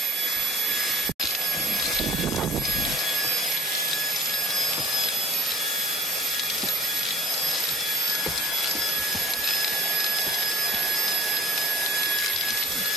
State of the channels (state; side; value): normal; both; correlation 0.49